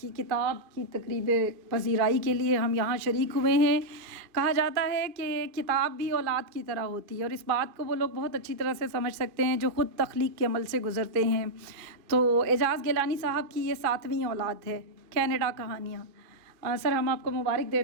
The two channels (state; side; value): late; left; 2.4 ms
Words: کتاب کی تقریب پذیرائی کے لیے ہم یہاں شریک ہوئے ہیں. کہا جاتا ہے کہ کتاب بھی اولاد کی طرح ہوتی ہے، اور اس بات کو وہ لوگ بہت اچھی طرح سے سمجھ سکتے ہیں جو خود تخلیق کے عمل سے گزرتے ہیں. تو اعجاز گیلانی صاحب کی یہ 7ویں اولاد ہے، کینیڈا کہانیاں. سر، ہم آپ کو مبارک